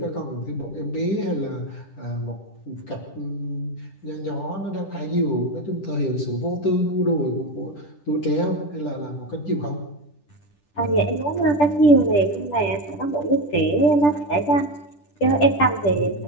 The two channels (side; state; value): right; late; 10 ms